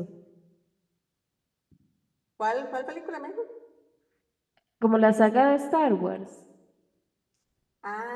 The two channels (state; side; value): identical; both; correlation 1.00